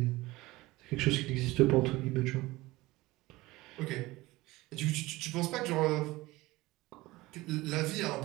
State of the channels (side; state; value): left; quieter; 19.8 dB